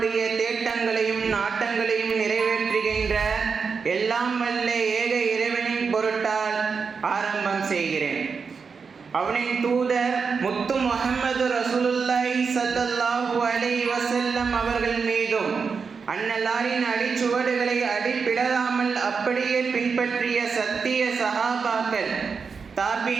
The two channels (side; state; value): left; quieter; 5.4 dB